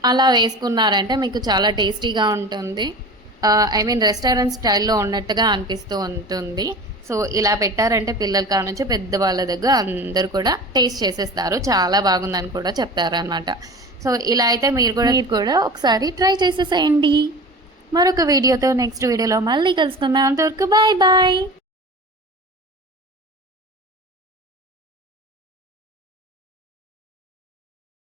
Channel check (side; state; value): both; normal; correlation 0.35